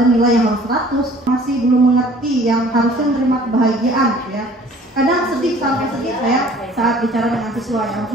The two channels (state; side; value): normal; both; correlation 0.52